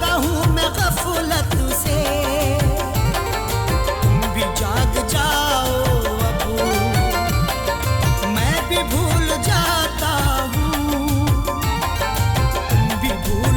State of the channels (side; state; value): both; identical; correlation 1.00